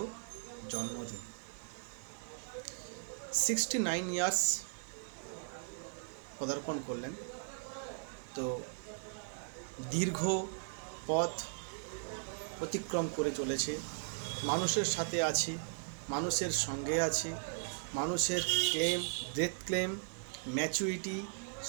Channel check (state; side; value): silent; left; 53 dB below the other